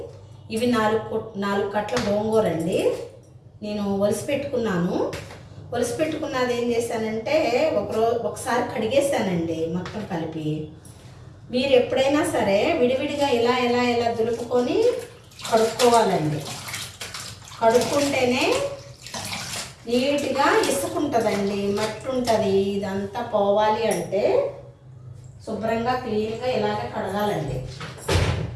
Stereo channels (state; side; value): identical; both; correlation 1.00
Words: ఇవి 4 కట్టల గోంగూర అండి. నేను ఒలిసి పెట్టుకున్నది ఏం చేశానంటే ఒకసారి కడిగేసానండి మొత్తం కలిపి. మీరు ఎప్పుడైనా సరే విడివిడిగా ఇలా దులుపుకొని కడుక్కోవాలండి. కడుక్కుంటేనే నీట్గా ఇసుకుంటుందండి, మట్టి ఉంటుంది. ఇదంతా పోవాలి అంటే శుభ్రంగా క్లీన్గా ఇలాగే కడగాలండి.